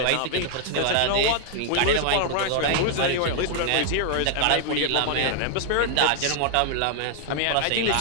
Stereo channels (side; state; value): both; different; correlation 0.00